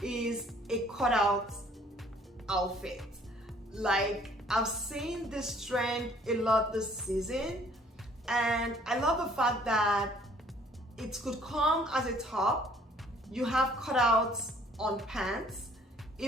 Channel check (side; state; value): both; normal; correlation 0.58